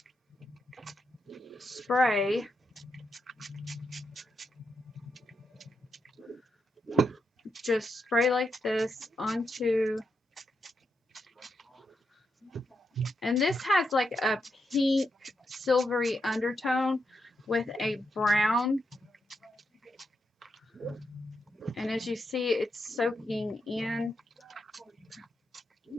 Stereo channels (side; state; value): both; normal; correlation 0.84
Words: spray like this onto, and this has like a pink silvery undertone with a brown, and as you see, it's soaking in